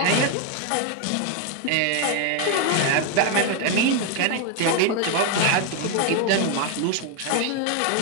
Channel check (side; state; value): both; different; correlation 0.01